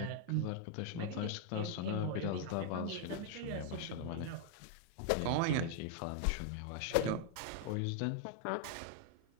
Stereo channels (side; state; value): both; different; correlation 0.00